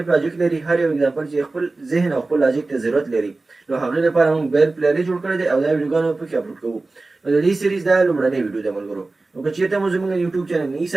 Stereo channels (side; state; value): left; quieter; 3.4 dB